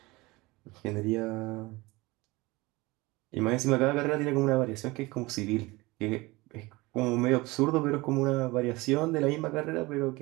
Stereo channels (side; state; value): left; quieter; 22.1 dB